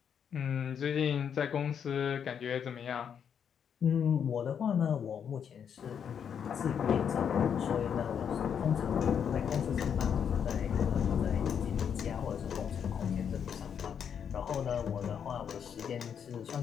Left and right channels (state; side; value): quieter; right; 7.8 dB